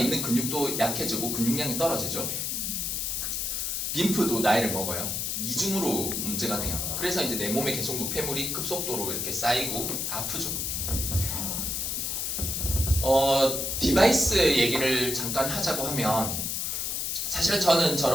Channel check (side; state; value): left; noise; hiss, 1 dB below the sound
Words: 근육도 약해지고 근육량이 떨어지죠. 림프도 나이를 먹어요. 이중으로 문제가 돼요. 그래서 이제 내 몸에 계속 노폐물이 급속도로 이렇게 쌓이고 아프죠. 디바이스 얘기를 잠깐 하자고 하면 사실은 저는